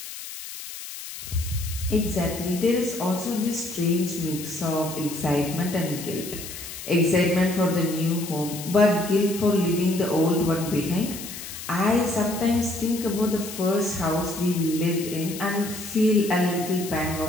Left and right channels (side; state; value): left; noise; hiss, 11 dB below the sound